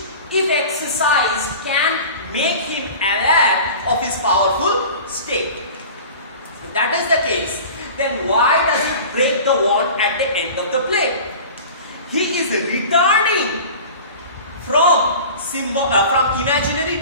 if exercised, can make him aware of his powerful state. If that is the case, then why does he break the wand at the end of the play? He is returning from imaginary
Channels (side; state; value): both; inverted; correlation -0.38